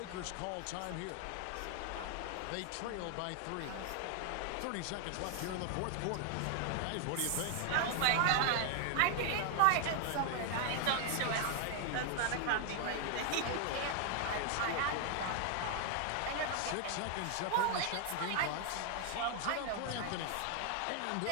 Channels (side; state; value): both; different; correlation 0.00